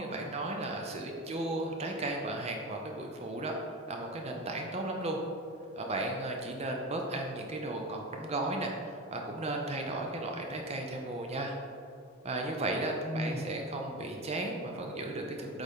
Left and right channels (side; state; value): both; normal; correlation 0.24